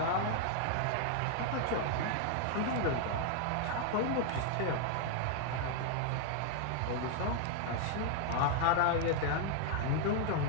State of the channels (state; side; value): different; both; correlation 0.00